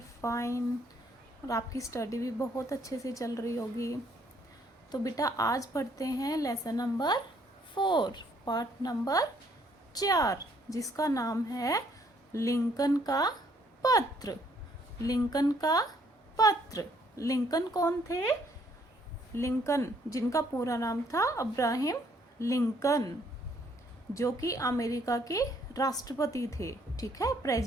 fine और आपकी study भी बहुत अच्छे से चल रही होगी। तो बेटा आज पढ़ते हैं लेसन नंबर 4, पार्ट नंबर 4, जिसका नाम है लिंकन का पत्र। लिंकन का पत्र। लिंकन कौन थे? लिंकन जिनका पूरा नाम था अब्राहम लिंकन, जो कि अमेरिका के राष्ट्रपति थे, ठीक है,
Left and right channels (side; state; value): both; normal; correlation 0.66